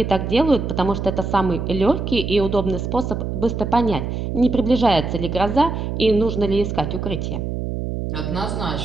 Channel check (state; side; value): noise; right; hum, 3 dB below the sound